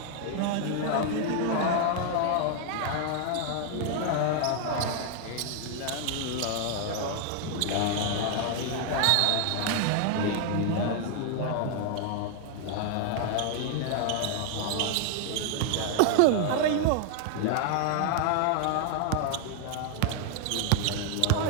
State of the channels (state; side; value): different; both; correlation 0.00